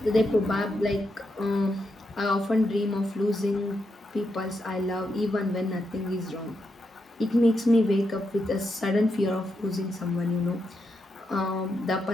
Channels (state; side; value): normal; both; correlation 0.83